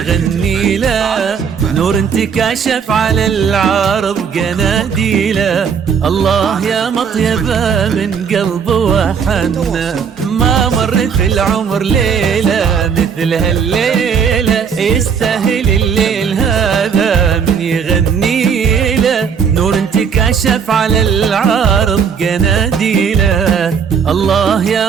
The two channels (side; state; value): left; quieter; 6.7 dB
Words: له. نور انتكاشف على العرض قناديله، الله يا مطيبة من قلب وحنا. ما مر في العمر ليلة مثل هالليلة، يستاهل الليل هذا من يغني له. نور انتكاشف على العرض قناديله، الله